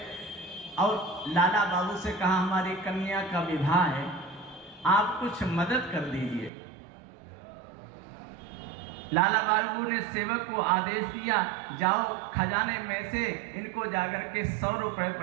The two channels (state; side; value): drops out; left; at 6.5 s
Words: और लाला बाबू से कहा, हमारी कन्या का विवाह है, आप कुछ मदद कर दीजिए। लाला बाबू ने सेवक को आदेश दिया, जाओ खजाने में से इनको जाकर के 100 रुपए